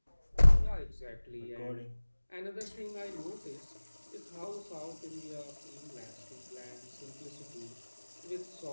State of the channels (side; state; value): both; inverted; correlation -1.00